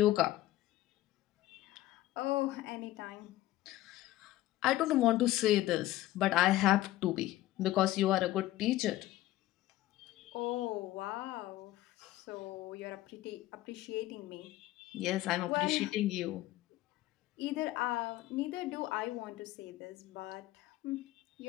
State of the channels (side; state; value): right; quieter; 15.8 dB